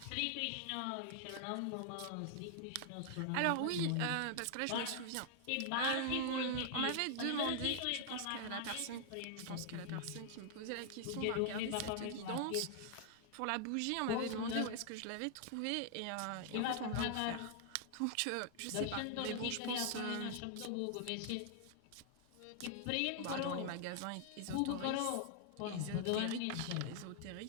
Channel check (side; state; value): both; different; correlation 0.00